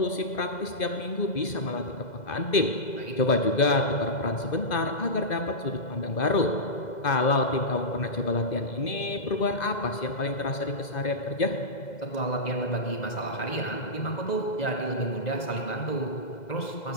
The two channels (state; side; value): late; right; 2.0 ms